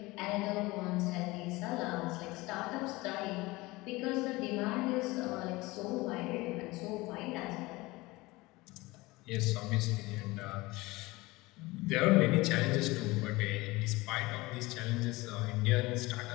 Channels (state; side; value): quieter; right; 21.5 dB